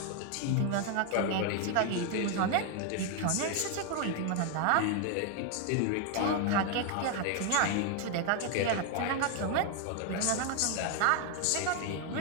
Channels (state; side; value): different; both; correlation 0.00